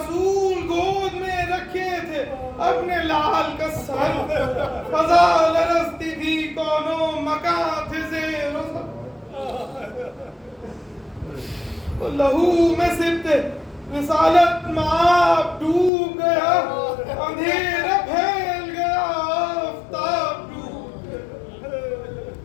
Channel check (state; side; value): drops out; right; at 15.9 s